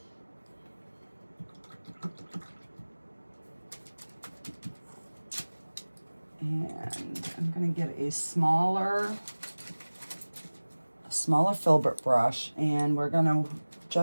And I'm going to get a smaller filbert brush, and we're going to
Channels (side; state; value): both; inverted; correlation -1.00